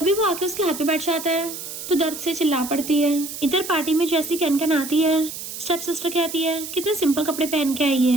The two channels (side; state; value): right; noise; hiss, 9 dB below the sound